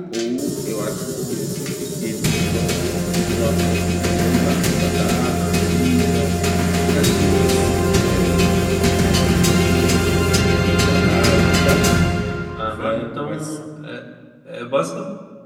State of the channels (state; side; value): identical; both; correlation 1.00